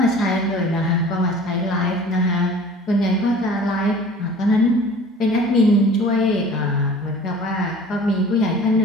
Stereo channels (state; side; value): normal; both; correlation 0.45